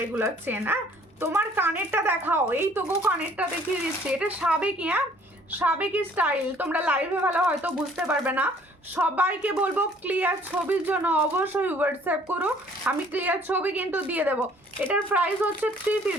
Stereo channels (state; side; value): normal; both; correlation 0.58